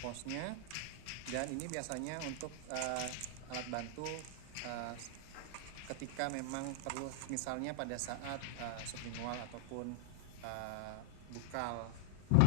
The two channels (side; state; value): both; different; correlation -0.01